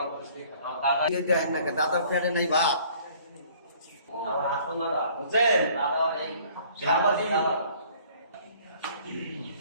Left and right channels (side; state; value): both; inverted; correlation -0.56